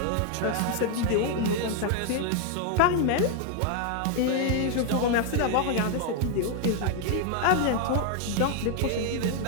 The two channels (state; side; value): different; both; correlation 0.00